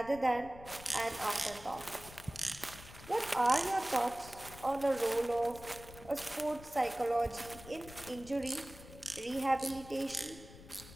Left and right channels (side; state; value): left; noise; rumble, 17 dB below the sound